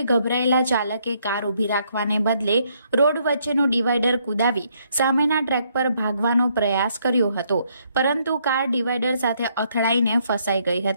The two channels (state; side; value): inverted; both; correlation -0.71